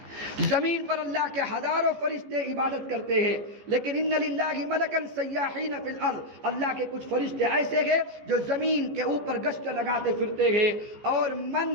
زمین پر اللہ کے ہزاروں فرشتے عبادت کرتے ہیں، لیکن ان للہ ملکا سیاحین فی الارض، اللہ کے کچھ فرشتے ایسے ہیں جو زمین کے اوپر گشت لگاتے پھرتے ہیں، اور من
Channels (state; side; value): late; left; 14 ms